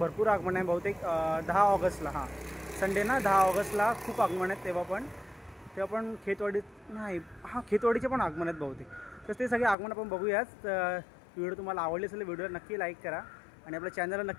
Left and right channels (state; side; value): drops out; right; at 9.8 s